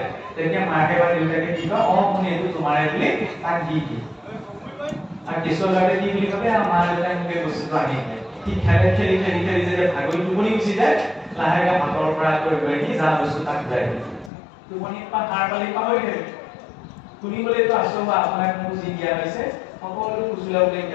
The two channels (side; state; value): right; drops out; at 14.3 s